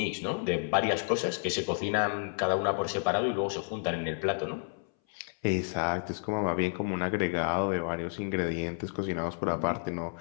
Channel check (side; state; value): right; silent; 57 dB below the other